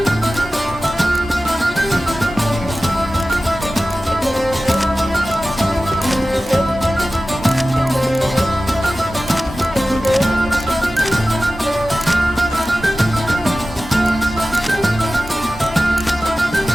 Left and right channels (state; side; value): normal; both; correlation 0.95